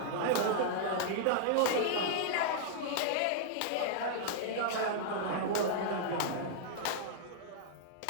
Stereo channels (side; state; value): both; different; correlation -0.01